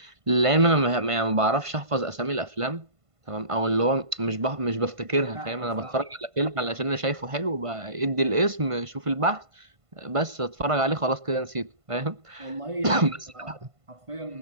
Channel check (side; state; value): left; late; 1.5 ms